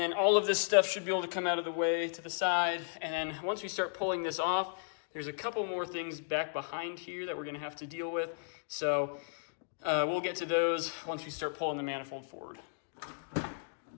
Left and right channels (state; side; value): silent; right; digital silence